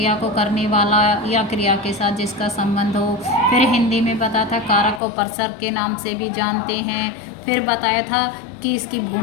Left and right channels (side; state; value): right; drops out; at 5.0 s